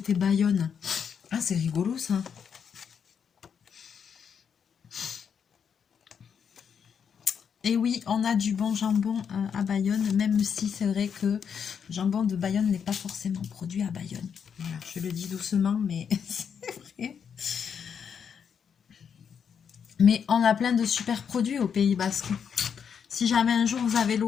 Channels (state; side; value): quieter; right; 7.2 dB